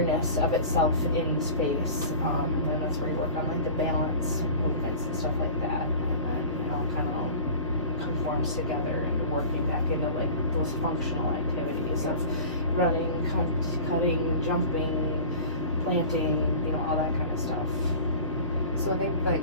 of itself in space. And then that's where you work on like the balance movements and stuff like that. And then it all kind of conforms together and working back into like those functional activities of running, cutting, jumping, planting, you know, all that kind of stuff. So I think like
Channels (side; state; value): both; inverted; correlation -0.38